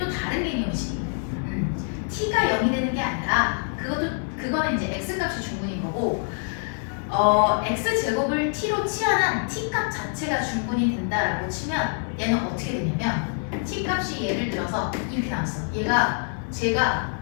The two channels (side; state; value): right; silent; 57 dB below the other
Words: 다른 개념이지. t가 0이 되는 게 아니라 그거는 이제 x 값이 중근인 거고, x 제곱을 t로 치환한 t 값 자체가 중근이 된다라고 치면 얘는 어떻게 되냐면 t 값이 예를 들어서 이렇게 나왔어. 제가